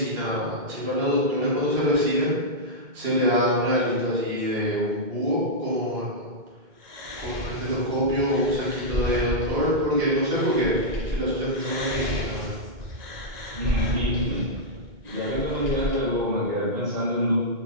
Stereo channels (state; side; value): late; left; 2.1 ms